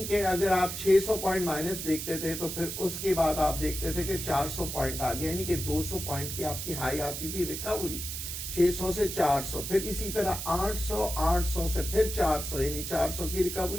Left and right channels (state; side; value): noise; right; hiss, 5 dB below the sound